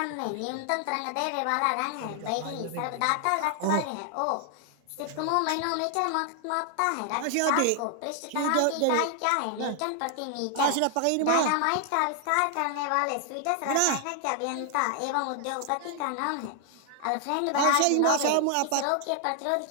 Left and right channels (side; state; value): both; different; correlation 0.00